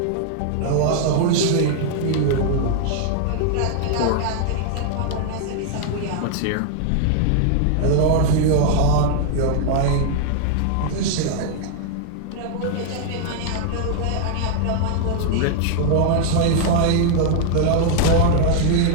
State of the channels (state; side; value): different; both; correlation 0.00